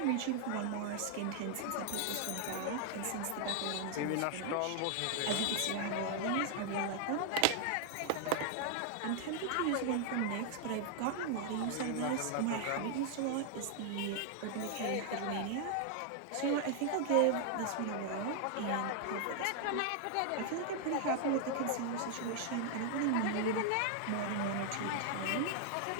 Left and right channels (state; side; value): different; both; correlation 0.00